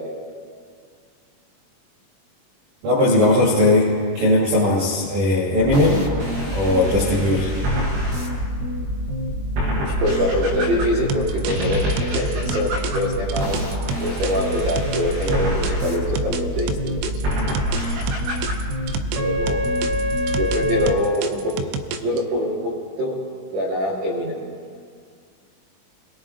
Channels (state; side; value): late; left; 21 ms